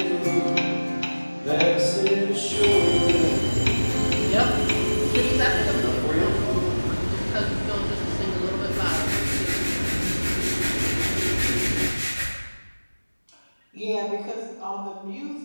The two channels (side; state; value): both; inverted; correlation -1.00